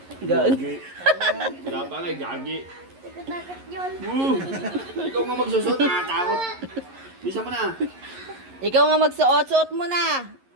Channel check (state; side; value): late; left; 11 ms